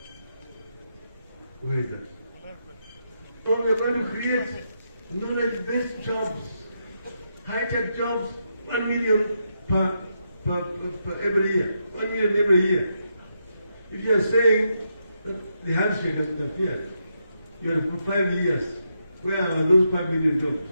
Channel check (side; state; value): both; inverted; correlation -0.82